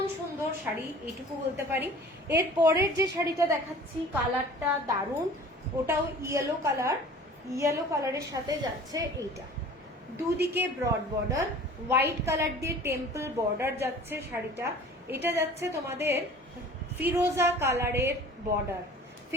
সুন্দর শাড়ি, এইটুকু বলতে পারি। এর পরের যে শাড়িটা দেখাচ্ছি, কালারটা দারুণ, ওটাও ইয়েলো কালার। ইয়েলো কালারের সাথে যাচ্ছে এইটা, দুদিকে ব্রড বর্ডার, হোয়াইট কালার দিয়ে টেম্পল বর্ডার যাচ্ছে শাড়িটা। এটা যাচ্ছে তোমাদের ফিরোজা কালারের বর্ডার,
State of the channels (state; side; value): normal; both; correlation 0.45